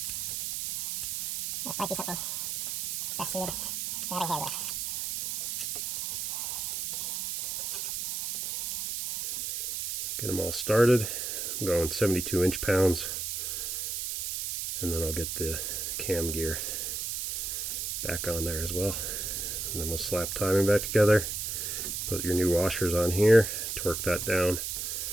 So it might be something best suited for having hand with. Get them all started. I'm going 72 inch-pounds, and then I'll get the cam gear back on there as well. And then we'll slap timing back together. Put your new washers on here, torque that down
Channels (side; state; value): right; noise; hiss, 3 dB below the sound